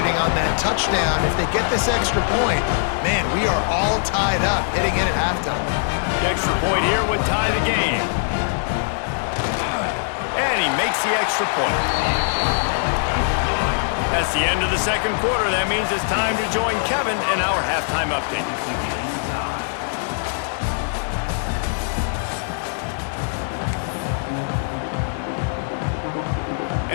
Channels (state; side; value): silent; right; digital silence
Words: on that touchdown. If they get this extra point, man, we are all tied up heading in at halftime. The extra point here would tie the game. And he makes the extra point. That's the end of the 2nd quarter. That means it's time to join Kevin in our halftime update.